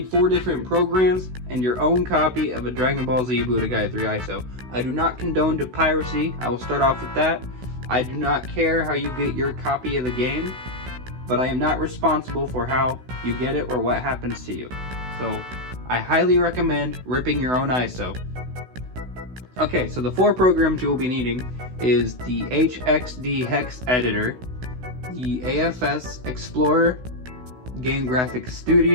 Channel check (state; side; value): late; left; 16 ms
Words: 4 different programs and your own copy of a Dragon Ball Z Budokai 3 ISO. I do not condone to piracy. I will start off with that. I do not care how you get your copy of the game, but I am not responsible for how you get it or what happens to you. So, I highly recommend ripping your own ISO. Okay, so the 4 programs you will be needing is the HXD Hex Editor, the AFS Explorer, Game Graphics